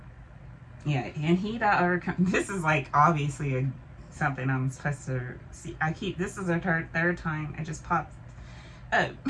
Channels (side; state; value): both; identical; correlation 1.00